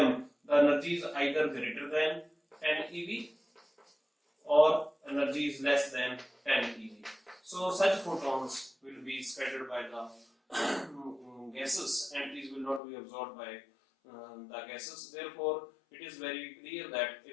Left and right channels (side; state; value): right; drops out; at 12.8 s